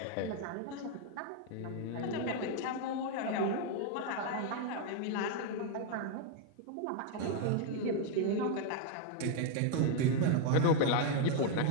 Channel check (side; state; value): both; different; correlation 0.00